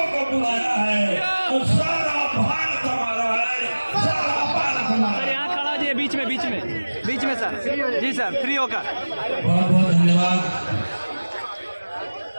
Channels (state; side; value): inverted; both; correlation -1.00